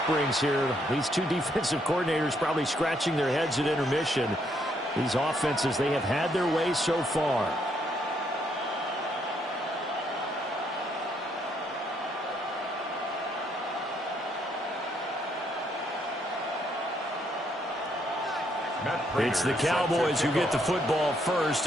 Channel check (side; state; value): both; normal; correlation 0.72